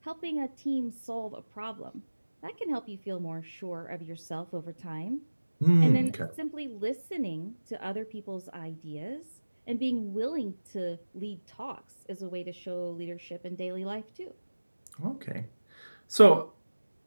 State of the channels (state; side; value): inverted; both; correlation -1.00